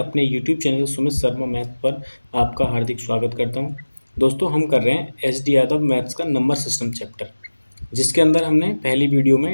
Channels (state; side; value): inverted; both; correlation -1.00